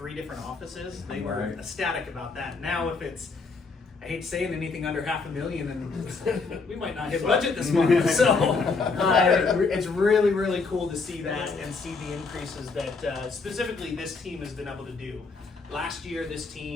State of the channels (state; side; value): quieter; right; 4.3 dB